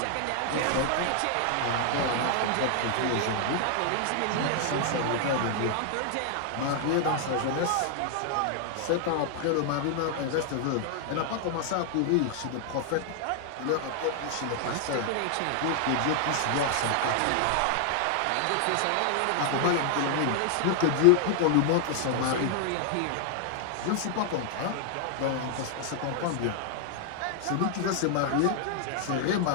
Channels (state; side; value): different; both; correlation 0.00